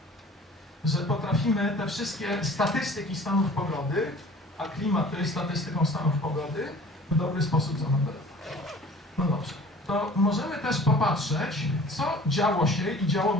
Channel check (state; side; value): normal; both; correlation 0.47